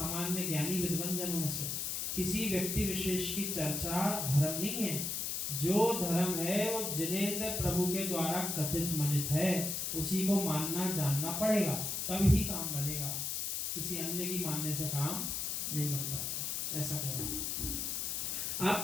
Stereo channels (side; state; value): left; noise; hiss, 1 dB below the sound